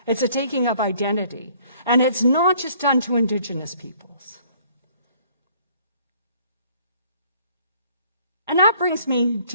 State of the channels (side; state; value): both; inverted; correlation -0.60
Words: It's a taking of identity. And it's not just done to Indigenous peoples. And that brings me